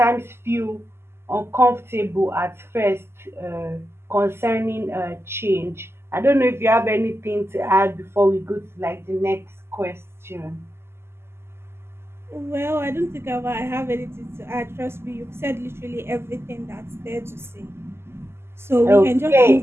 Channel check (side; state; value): left; late; 0.12 ms